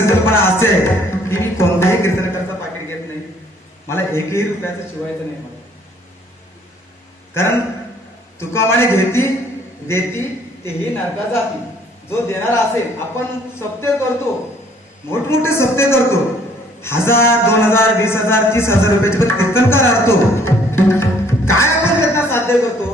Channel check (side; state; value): both; normal; correlation 0.61